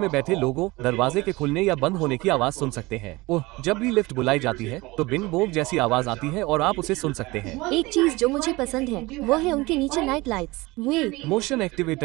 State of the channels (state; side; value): quieter; left; 22.0 dB